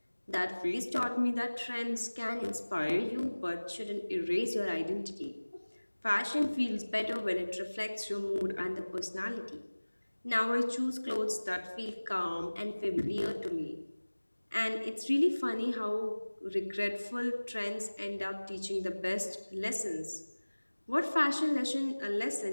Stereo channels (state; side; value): inverted; both; correlation -1.00